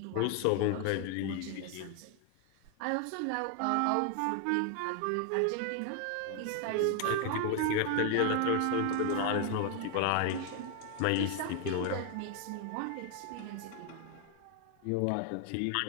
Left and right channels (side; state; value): both; different; correlation 0.00